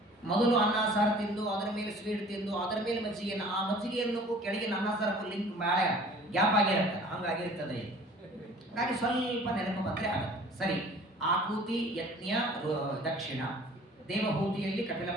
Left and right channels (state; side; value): normal; both; correlation 0.49